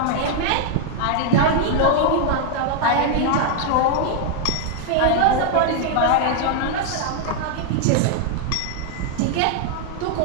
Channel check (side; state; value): both; different; correlation 0.00